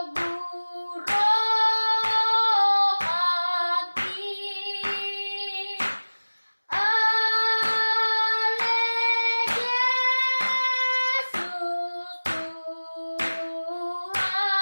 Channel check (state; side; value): inverted; both; correlation -1.00